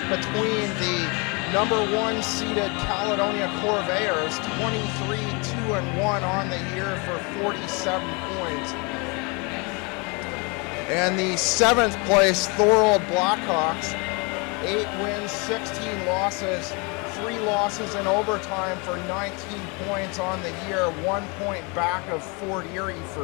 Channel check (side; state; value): right; quieter; 30.7 dB